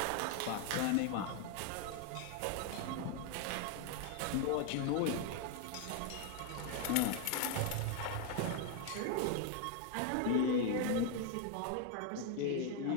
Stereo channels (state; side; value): different; both; correlation 0.01